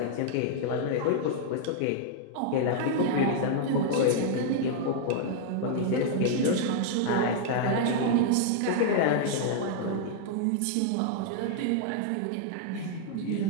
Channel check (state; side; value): different; both; correlation -0.01